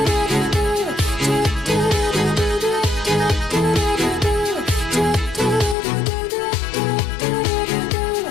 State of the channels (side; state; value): right; drops out; at 5.8 s